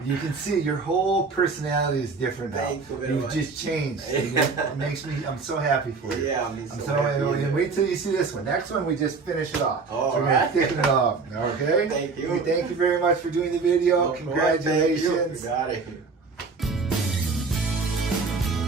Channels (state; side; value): quieter; left; 4.5 dB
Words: You can see your whole personality is different now. Thank you very much. You've just changed. It makes me, I'm so happy for you. Yeah, I'm so happy. And wait till you see this one. Next one, we just finish it off. All so we're right. going to thicken it off. Okay? Thank you. Thank you very much for doing the video. No, Congratulations. thank you. You got it.